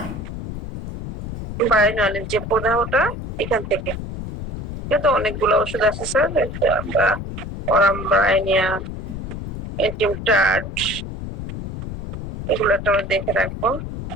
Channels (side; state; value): left; noise; rumble, 8 dB below the sound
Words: বায়োনালের যে প্রদাহটা এখান থেকে। কিন্তু অনেকগুলো ওষুধ আছে স্যার, আমরা অরামব্রাইনিয়া, এন্টিমটাট, এগুলো একটা দেখে রাখবো।